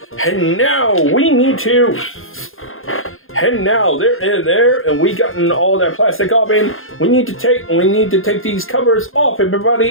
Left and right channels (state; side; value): late; right; 0.60 ms